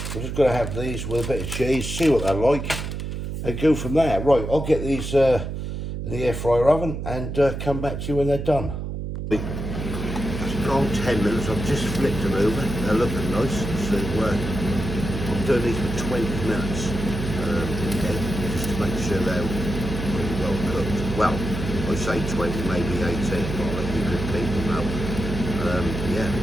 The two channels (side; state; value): right; noise; hum, 5 dB below the sound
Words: we're just going to have these with a bit of cheese, see what they're like, and go from there. Right, I'll get these in the air fryer oven and come back to you when they're done. It's gone 10 minutes, I've just flipped them over, they're looking nice, so I'm doing these for 20 minutes, okay, just to make sure they're pretty well cooked. Well, I say 20, maybe 18, but I'll let you good people know. Yeah,